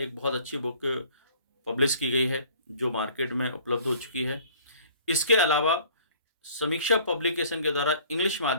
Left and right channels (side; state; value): both; inverted; correlation -0.53